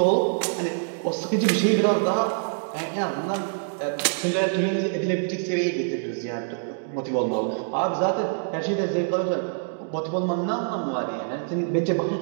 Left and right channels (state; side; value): silent; left; digital silence